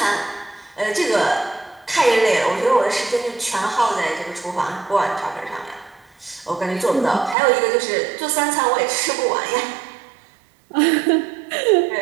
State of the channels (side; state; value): left; drops out; at 7.4 s